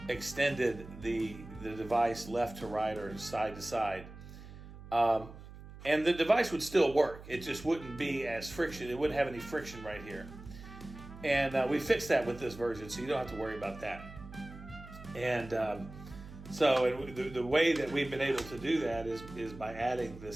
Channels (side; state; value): right; noise; hum, 15 dB below the sound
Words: extended the device left to right or side to side. And the device would still work. It just wouldn't be as friction. It wouldn't have any friction right here. And we fixed that with this version, so you don't have to worry about that. And so the way that we've been able to do that is by adding